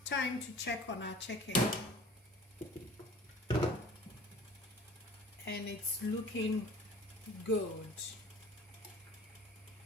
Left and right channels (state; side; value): normal; both; correlation 0.46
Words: time to check on our chicken, and it's looking good.